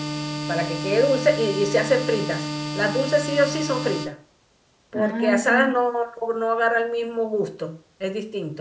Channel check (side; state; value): both; identical; correlation 1.00